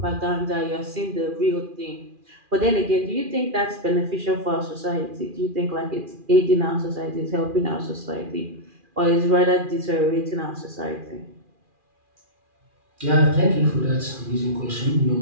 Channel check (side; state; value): left; late; 2.4 ms